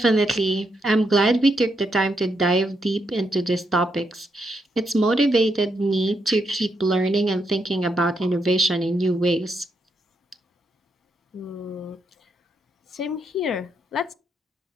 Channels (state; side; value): normal; both; correlation 0.79